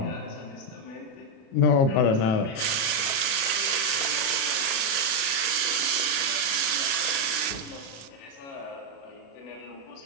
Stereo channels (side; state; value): right; late; 36 ms